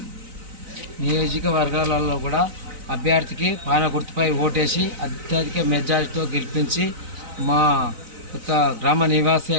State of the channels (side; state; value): left; late; 3.9 ms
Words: నియోజకవర్గాలలో కూడా అభ్యర్థికి పాన గుర్తుపై ఓటేసి అత్యధిక మెజారిటీతో గెలిపించి మా యొక్క గ్రామ నివాసి